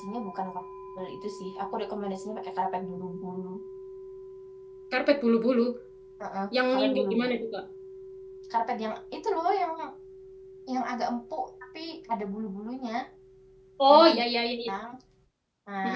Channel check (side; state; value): both; identical; correlation 1.00